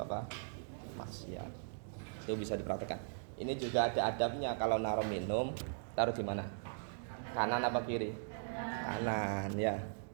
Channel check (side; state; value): left; silent; digital silence